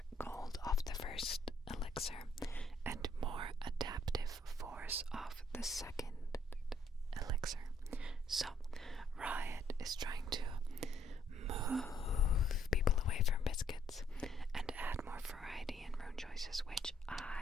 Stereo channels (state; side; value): normal; both; correlation 0.68